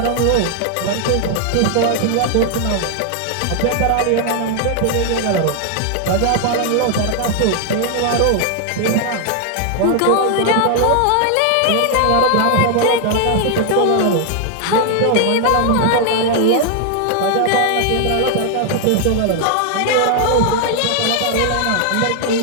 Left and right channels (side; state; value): both; different; correlation 0.00